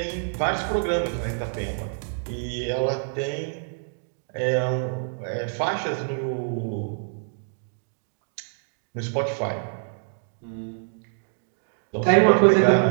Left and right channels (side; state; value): left; silent; digital silence